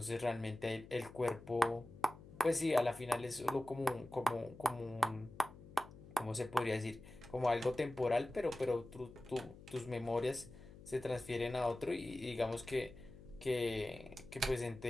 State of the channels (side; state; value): left; noise; hum, 18 dB below the sound